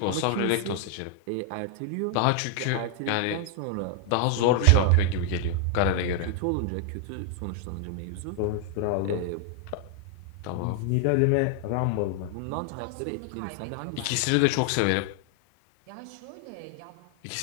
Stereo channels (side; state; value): both; different; correlation 0.00